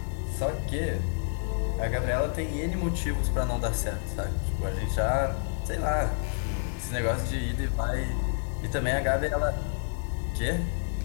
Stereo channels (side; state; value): right; silent; digital silence